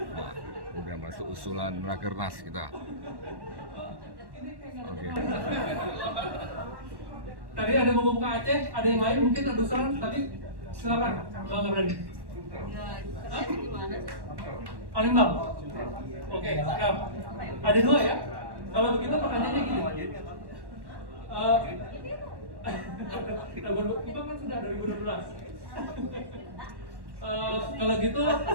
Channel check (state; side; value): late; left; 1.1 ms